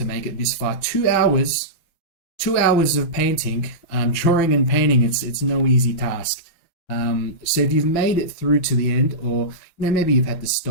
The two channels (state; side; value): late; right; 6.0 ms